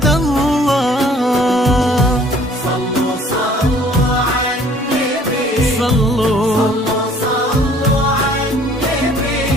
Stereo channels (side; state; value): both; normal; correlation 0.56